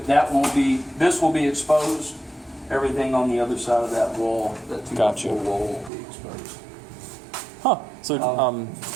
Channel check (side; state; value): left; drops out; at 5.9 s